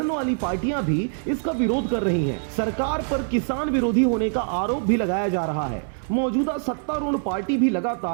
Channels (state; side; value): silent; left; 63 dB below the other